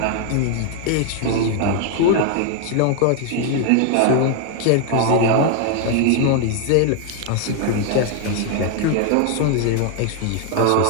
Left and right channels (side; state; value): both; different; correlation 0.00